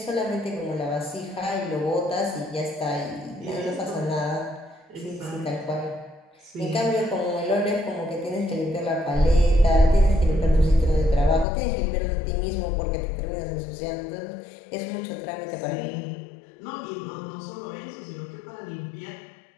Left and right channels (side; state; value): right; drops out; at 11.5 s